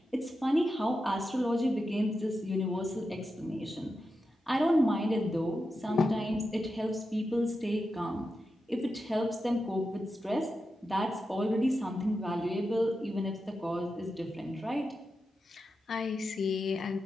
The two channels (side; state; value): both; normal; correlation 0.89